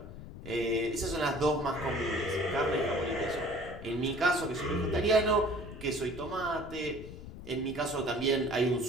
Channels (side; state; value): left; noise; rumble, 13 dB below the sound